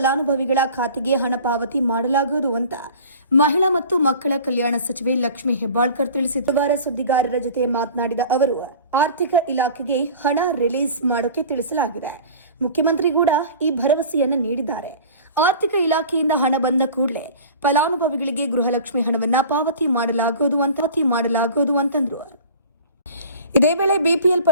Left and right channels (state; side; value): inverted; both; correlation -0.41